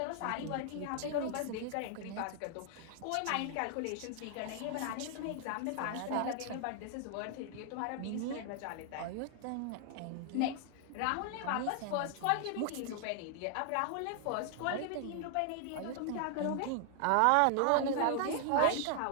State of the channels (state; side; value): different; both; correlation 0.00